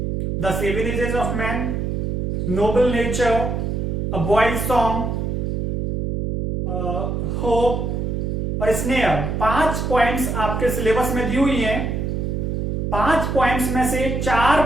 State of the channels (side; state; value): right; noise; hum, 1 dB below the sound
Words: the seven ages of man, noble nature, a boy's song, hope और स्नेयर। 5 पोएम्स आपके सिलेबस में दी हुई हैं। 5 पोएम्स में से 4